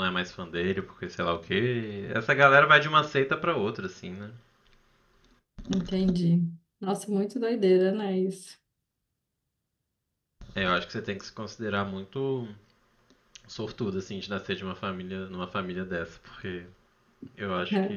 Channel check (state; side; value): identical; both; correlation 1.00